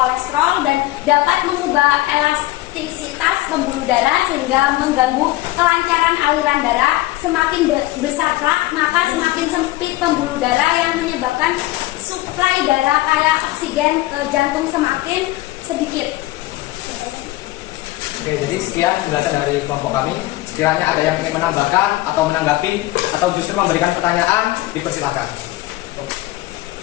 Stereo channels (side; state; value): right; quieter; 17.8 dB